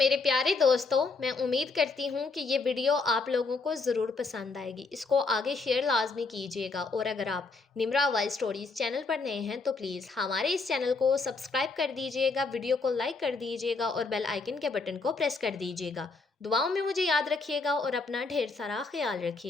پیارے دوستو، میں امید کرتی ہوں کہ یہ ویڈیو آپ لوگوں کو ضرور پسند آئے گی، اس کو آگے شیئر لازمی کیجیے گا، اور اگر آپ نمرا وائس اسٹوریز چینل پر نئے ہیں تو پلیز ہمارے اس چینل کو سبسکرائب کر دیجیے گا، ویڈیو کو لائک کر دیجیے گا اور بیل آئیکن کے بٹن کو پریس کر دیجیے گا۔ دعاؤں میں مجھے یاد رکھیے گا اور اپنا ڈھیر سارا خیال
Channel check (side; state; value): right; quieter; 4.0 dB